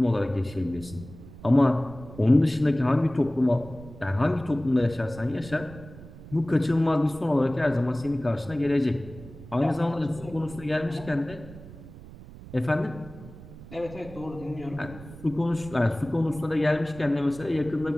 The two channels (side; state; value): right; noise; rumble, 16 dB below the sound